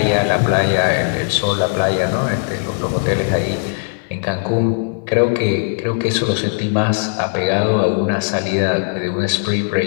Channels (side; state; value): right; silent; 62 dB below the other